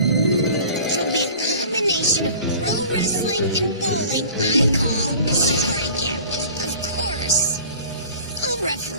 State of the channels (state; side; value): inverted; both; correlation -0.44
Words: It'll be a combination of pro wrestling and bowling I call Strikeout. Of course, I'll